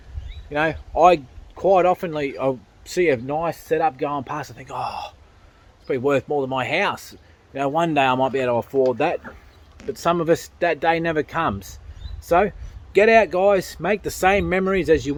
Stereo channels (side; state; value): both; identical; correlation 1.00